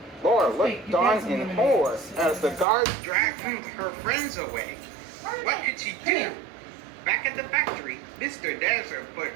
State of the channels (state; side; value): drops out; left; at 2.7 s